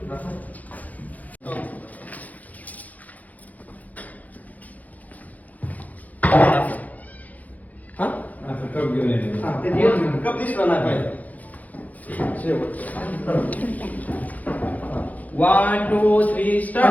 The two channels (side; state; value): right; late; 0.078 ms